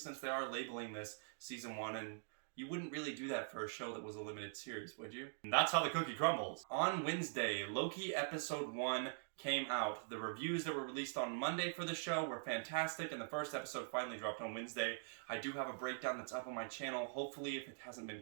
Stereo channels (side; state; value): left; silent; digital silence